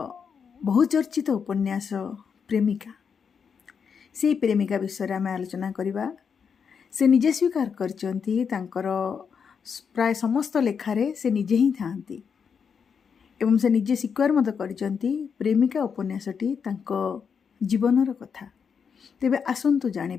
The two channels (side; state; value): right; quieter; 6.5 dB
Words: बहुचर्चित उपन्यास प्रेमिका से प्रेमिका विषय आम आलोचना करवा। से निजे स्वीकार करचंती तांकर प्राय समस्त लेखारे से निजे ही थांती एवं से निजे स्वीकार मत करचंती प्रेमिका उपन्यासटी तांको जीवनर कथा। तेबे आसंतु